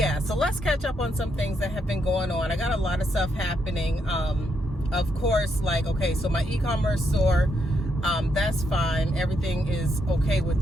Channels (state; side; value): normal; both; correlation 0.78